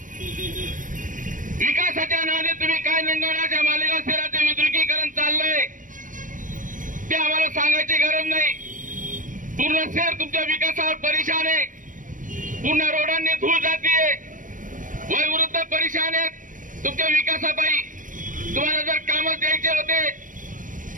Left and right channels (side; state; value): left; late; 0.38 ms